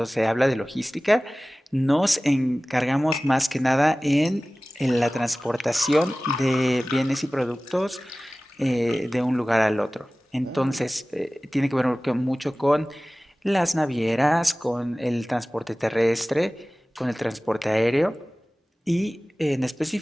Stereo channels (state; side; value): normal; both; correlation 0.98